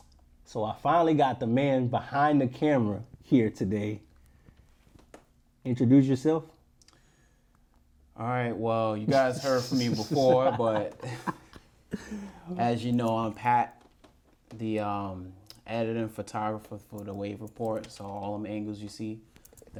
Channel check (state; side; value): identical; both; correlation 1.00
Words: So I finally got the man behind the camera here today. Introduce yourself. All right, well, you guys heard from me before, but as you know, I'm Pat, the editor and photographer for the Wave Report. So all them angles you see,